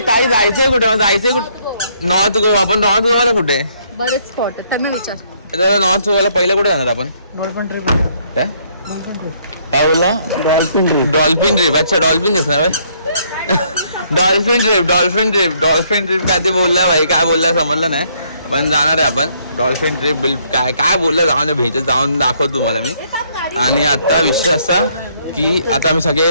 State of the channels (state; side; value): inverted; both; correlation -0.68